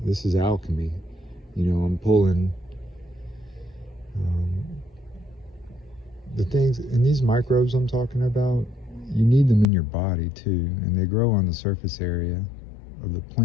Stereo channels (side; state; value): right; drops out; at 9.7 s